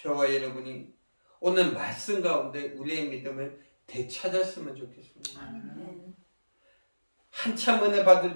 여러분이 오늘 말씀 가운데 우리의 믿음을 되찾았으면 좋겠습니다. 한참 은혜 받을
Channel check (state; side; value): inverted; both; correlation -1.00